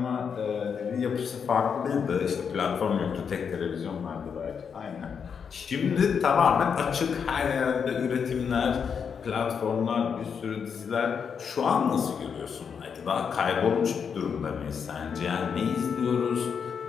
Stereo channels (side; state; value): right; quieter; 6.7 dB